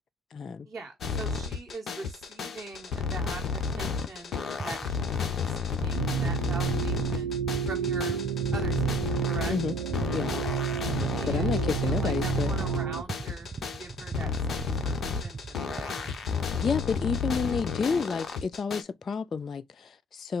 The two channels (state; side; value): normal; both; correlation 0.51